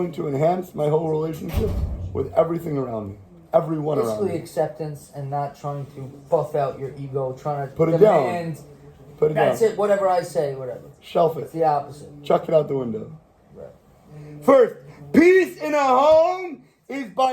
to enhance my whole relationship with everything around me? Everyone around me. Basically acceptance and not trying to buff out your ego, trying to Put it demand. down. Put it That's down. it, whatever I say, whatever. Shelf it. It's the opposite. Chuck it out the window. Right. First, peace in a home is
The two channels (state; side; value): identical; both; correlation 1.00